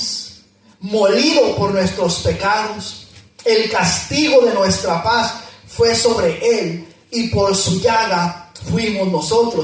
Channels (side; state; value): both; identical; correlation 1.00